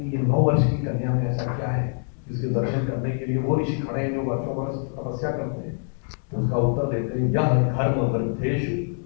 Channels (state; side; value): silent; right; 55 dB below the other